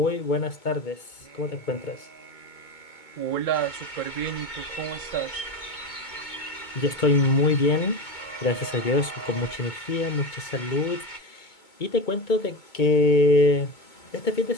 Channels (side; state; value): right; late; 2.2 ms